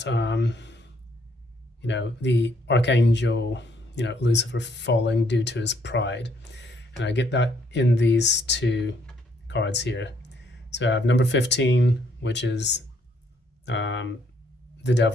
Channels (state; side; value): normal; both; correlation 0.69